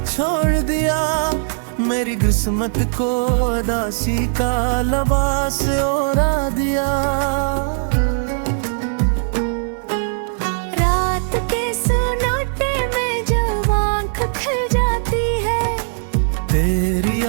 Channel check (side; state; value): left; silent; digital silence